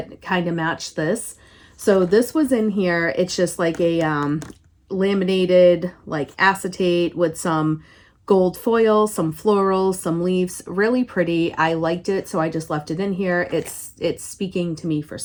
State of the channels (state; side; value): identical; both; correlation 1.00